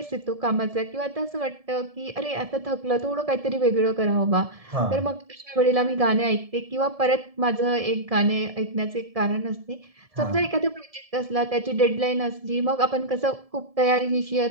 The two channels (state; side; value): late; left; 1.7 ms